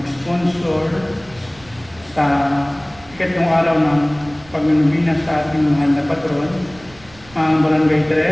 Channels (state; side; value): noise; right; rumble, 24 dB below the sound